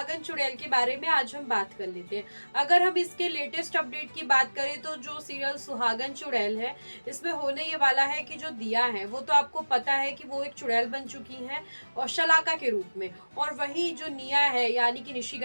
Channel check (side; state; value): both; inverted; correlation -1.00